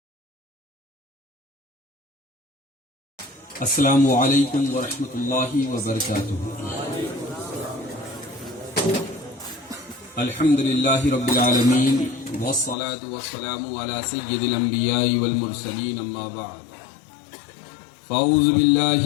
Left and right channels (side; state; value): right; drops out; at 12.8 s